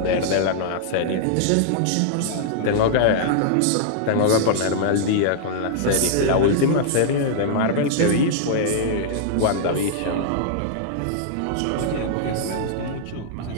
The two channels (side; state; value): both; different; correlation -0.01